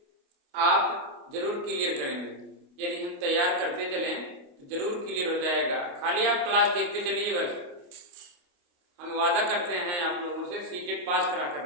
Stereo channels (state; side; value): late; left; 28 ms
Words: आप जरूर क्लियर करेंगे। यदि हम तैयार करते चलें तो जरूर क्लियर हो जाएगा। खाली आप क्लास देखते चलिए, बस हम वादा करते हैं आप लोगों से सीटेट पास करा कर